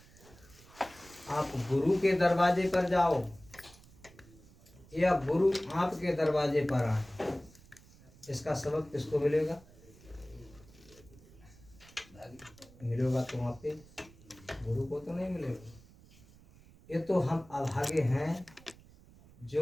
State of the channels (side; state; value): right; noise; rumble, 24 dB below the sound